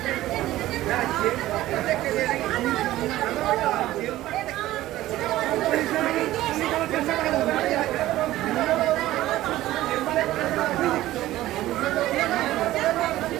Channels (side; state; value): left; quieter; 15.4 dB